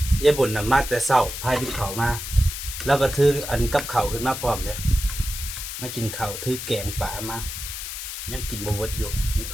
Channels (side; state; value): left; noise; hiss, 7 dB below the sound